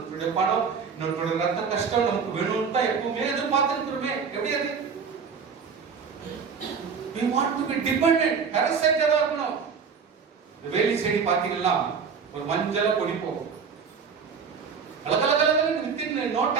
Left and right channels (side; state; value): left; quieter; 6.0 dB